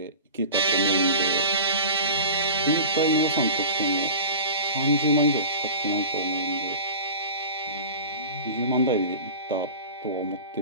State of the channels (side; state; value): both; inverted; correlation -0.36